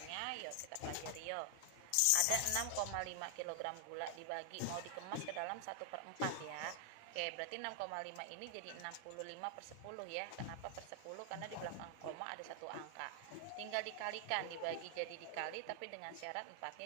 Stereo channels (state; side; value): different; both; correlation 0.00